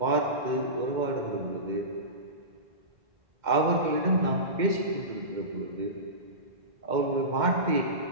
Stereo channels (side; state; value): left; late; 2.1 ms